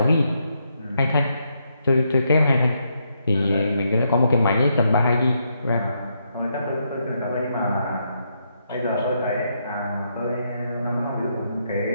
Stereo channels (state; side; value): inverted; both; correlation -0.78